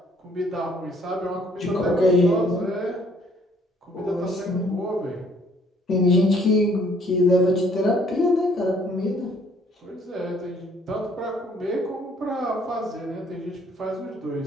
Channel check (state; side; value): normal; both; correlation 0.62